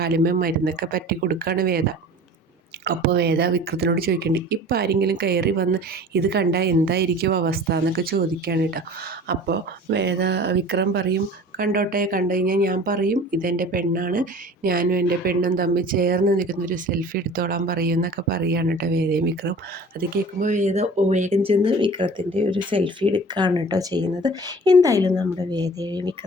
മരുന്നൊക്കെ പറ്റി കൊടുക്കുകയാണ് വേദ. അപ്പോൾ വേദ വിക്രത്തിനോട് ചോദിക്കേണ്ടി, ഇപ്പം ആരെങ്കിലും കയറി വന്ന് ഇത് കണ്ടാൽ എന്തായിരിക്കും അവസ്ഥ എന്നൊക്കെ ചോദിക്കുകയാണ് കേട്ടോ. അപ്പോൾ വിക്രം പറയും, കണ്ടോട്ടെ, കണ്ടു കഴിഞ്ഞാൽ ഞാൻ പറയും ഇതെൻ്റെ പെണ്ണാണ്, ഞാനും എൻ്റെ പെണ്ണും തമ്മിൽ ചേർന്ന് നിൽക്കുന്നൊരു സെൽഫി എടുത്തോളാൻ പറയും എന്നൊക്കെ പറയുകയാണ് കേട്ടോ വേദയും വിക്രം. അത് കേൾക്കുമ്പോൾ വേഗം ചെന്ന് വിക്രത്തിൻ്റെ ഒരു സെൽഫി എടുക്കുകയാണ് കേട്ടോ ചെയ്യുന്നത്. എന്തായാലും നമ്മുടെ വേദയും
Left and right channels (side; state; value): both; normal; correlation 0.43